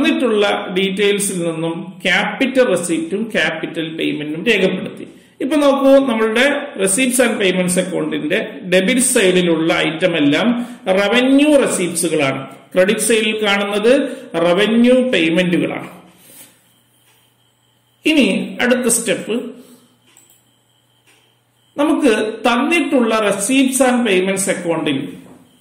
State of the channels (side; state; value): both; identical; correlation 1.00